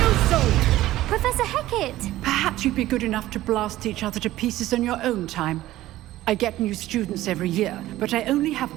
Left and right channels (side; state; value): left; quieter; 15.4 dB